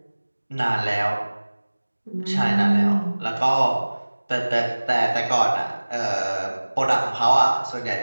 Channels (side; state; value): both; inverted; correlation -1.00